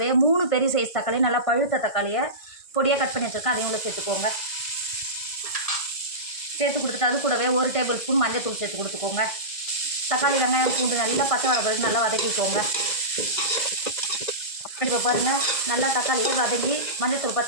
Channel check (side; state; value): right; late; 1.6 ms